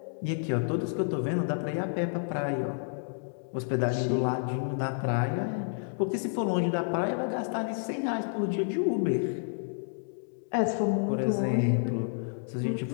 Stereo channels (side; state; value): right; silent; digital silence